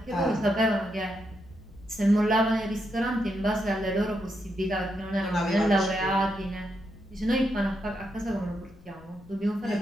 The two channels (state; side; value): noise; left; rumble, 23 dB below the sound